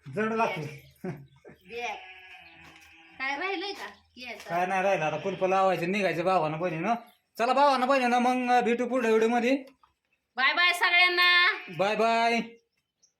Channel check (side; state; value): both; identical; correlation 1.00